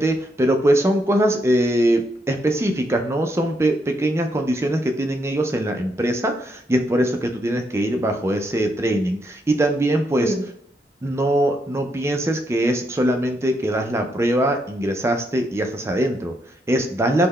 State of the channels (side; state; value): both; normal; correlation 0.78